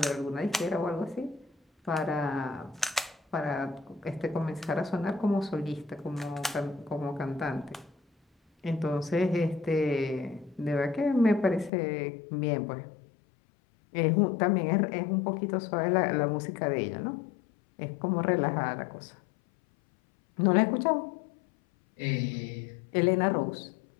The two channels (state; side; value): drops out; right; at 11.7 s